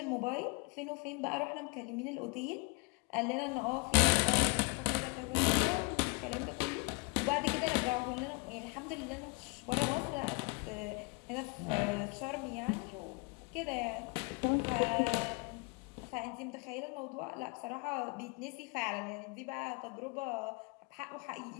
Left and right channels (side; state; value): right; quieter; 30.3 dB